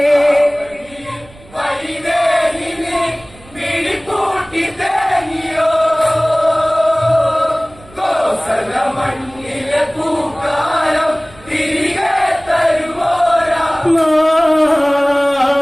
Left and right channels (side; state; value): right; noise; rumble, 24 dB below the sound